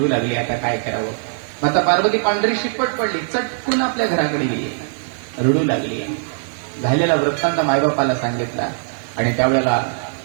लागले. आता काय करावं? माता पार्वती पांढरी शिपट पडली, चटकून आपल्या घराकडे गेली, रडू लागली. झालेला वृत्तांत मायबापाला सांगितला आणि त्यावेळेला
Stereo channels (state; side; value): silent; left; digital silence